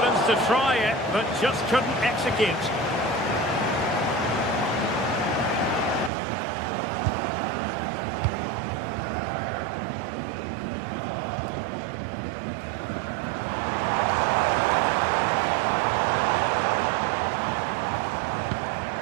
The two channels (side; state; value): left; drops out; at 6.1 s